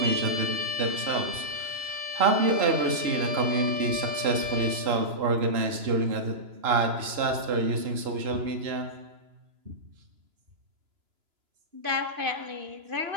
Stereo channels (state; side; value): late; left; 2.9 ms